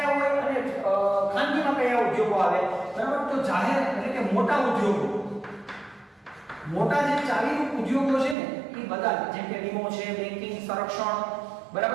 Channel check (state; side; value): drops out; left; at 8.3 s